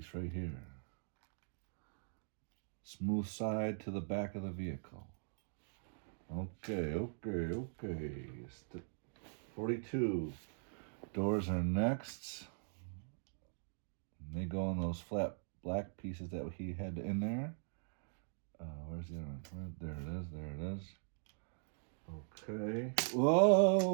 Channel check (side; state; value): left; silent; digital silence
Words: right here. Smooth side to the back of the vehicle. Okay. 42. Doors are next. And they go on those flat black pieces that he had in there. Where's the other one? There it is. Okay.